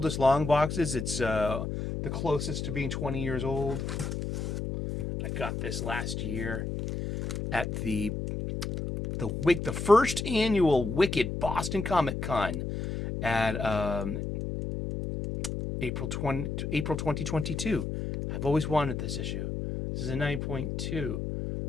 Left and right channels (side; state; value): left; noise; hum, 3 dB below the sound